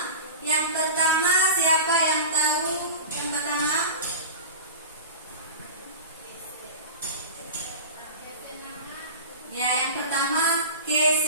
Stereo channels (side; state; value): both; inverted; correlation -0.32